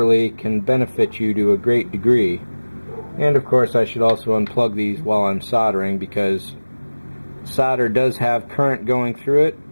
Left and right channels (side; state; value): both; inverted; correlation -1.00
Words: can benefit you to a great degree. And of course I should also unplug these while I'm soldering, because solder does have current going through it,